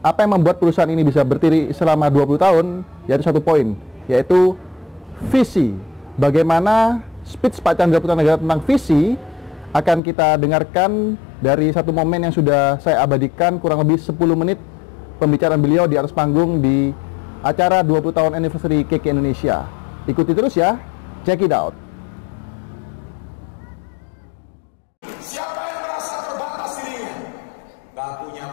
apa yang membuat perusahaan ini bisa berdiri selama 20 tahun, yaitu satu poin, yaitu visi. Bagaimana speech Pak Chandra Putra Negara tentang visi akan kita dengarkan dari satu momen yang sudah saya abadikan, kurang lebih 10 menit pembicaraan beliau di atas panggung di acara 20 tahun anniversary KK Indonesia. Ikuti terus ya, check it out. Siapa yang merasa terbatas dirinya? Gak punya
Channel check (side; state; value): right; drops out; at 10.0 s